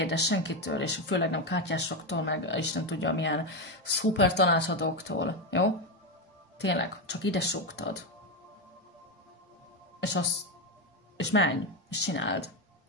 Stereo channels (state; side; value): normal; both; correlation 0.10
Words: senkitől, és főleg nem kártyásoktól, meg Isten tudja milyen szuper tanácsadóktól, jó? Tényleg, csak ide súgtad. És menj, és csináld.